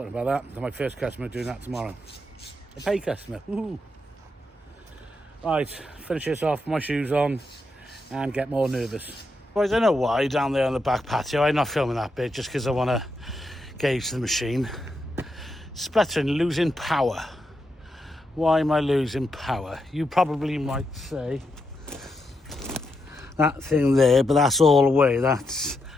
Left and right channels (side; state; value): both; normal; correlation 0.83